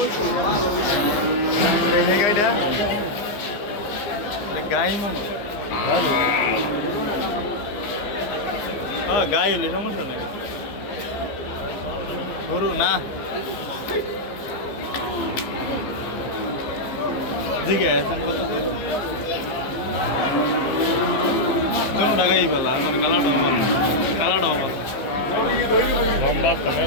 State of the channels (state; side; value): late; right; 15 ms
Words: গাইটা গাই মামা হ্যাঁ গাই হলে সমস্যা নেই গরু না জিগে আছেন কত কোনো টাকাই পেলা মানে কালাটা আমার কালাটা আমার